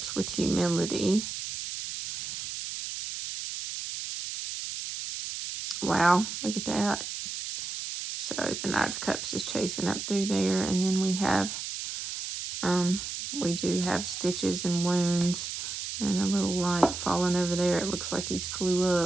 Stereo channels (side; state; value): right; noise; hiss, 6 dB below the sound